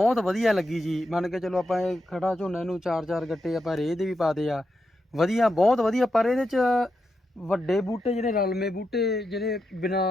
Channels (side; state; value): both; normal; correlation 0.85